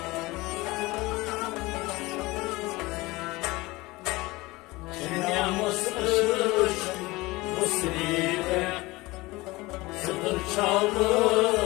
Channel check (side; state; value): right; quieter; 21.4 dB